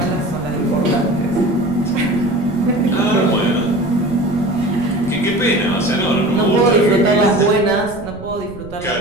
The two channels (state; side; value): noise; right; rumble, 16 dB below the sound